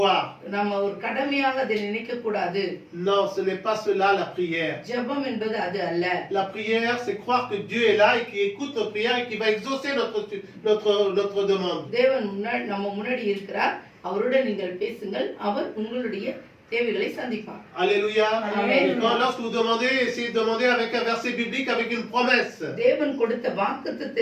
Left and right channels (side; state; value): both; identical; correlation 1.00